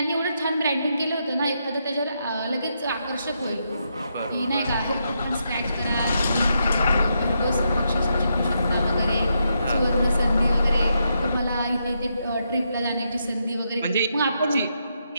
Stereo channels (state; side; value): inverted; both; correlation -0.81